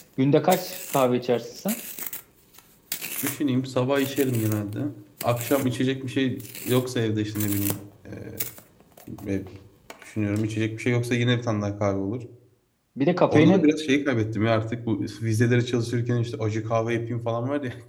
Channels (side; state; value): both; identical; correlation 1.00